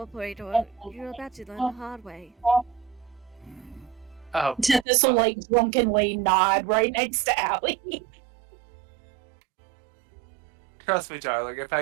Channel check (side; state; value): left; drops out; at 4.9 s